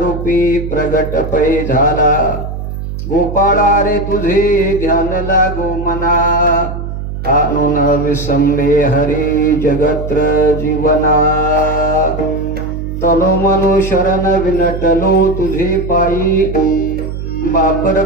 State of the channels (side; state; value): right; noise; hum, 6 dB below the sound